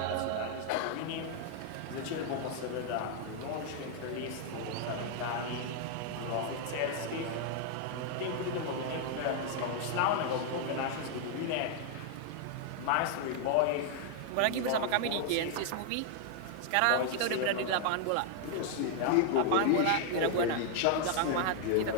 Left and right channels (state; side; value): different; both; correlation 0.00